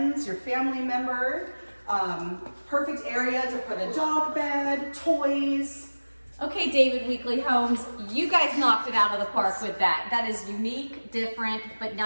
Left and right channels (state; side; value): inverted; both; correlation -1.00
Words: your family member. Perfect area to put a dog bed, toys. Okay, David Weekly Homes, you guys knocked it out of the park with that. That is unique, different, but